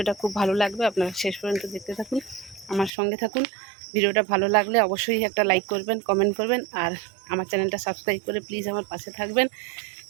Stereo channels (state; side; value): drops out; left; at 2.9 s